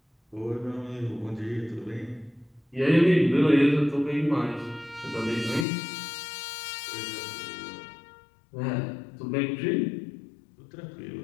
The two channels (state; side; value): drops out; right; at 5.7 s